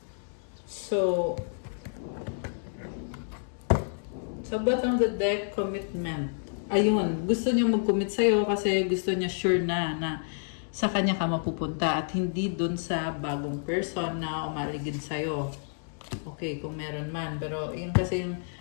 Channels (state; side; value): silent; right; digital silence